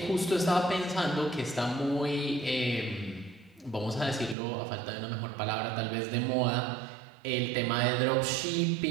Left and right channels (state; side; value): drops out; left; at 4.4 s